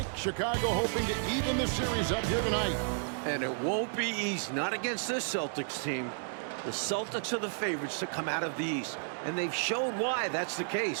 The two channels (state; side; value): silent; left; digital silence